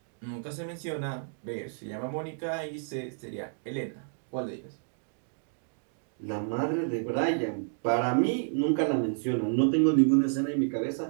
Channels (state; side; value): silent; left; digital silence